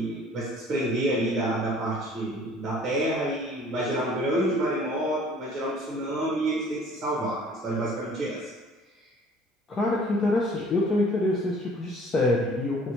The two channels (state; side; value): normal; both; correlation 0.52